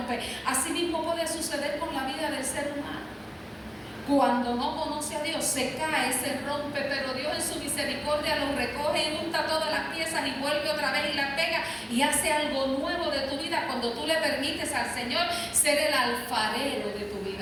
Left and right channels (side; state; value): both; identical; correlation 1.00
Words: Así mismo puede suceder con la vida del ser humano. Cuando no conoce a Dios, se cae, se rompe, pero Dios en su misericordia lo recoge y junta todas las piezas y vuelve otra vez y las pega y hace algo nuevo de tu vida cuando tú le permites al Señor ser el alfarero de tu